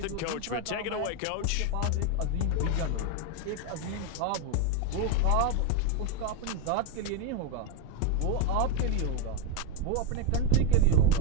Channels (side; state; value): both; different; correlation 0.02